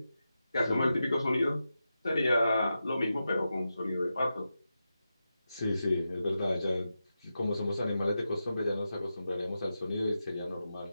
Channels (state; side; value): inverted; both; correlation -0.90